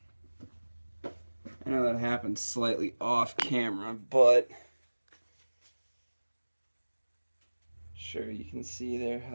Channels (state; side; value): inverted; both; correlation -1.00